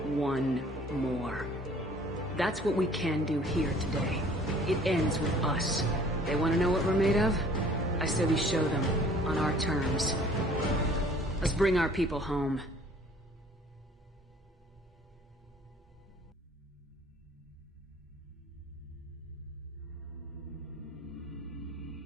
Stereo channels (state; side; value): normal; both; correlation 0.53